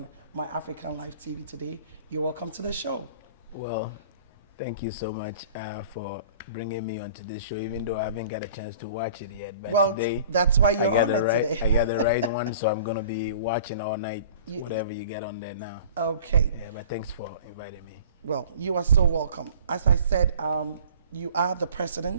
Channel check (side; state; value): both; inverted; correlation -0.47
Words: My African Life TV today. You're welcome to the show. Well, thank you so much for bringing me onto this show, even though I haven't got a chance to watch it yet. But well, today, that's why you're on it today. I got the right one, so I'm going to be watching all night, whatever you get on there now. Okay. Yeah, but thanks for inviting me. Well, you are so welcome. As I said, you are the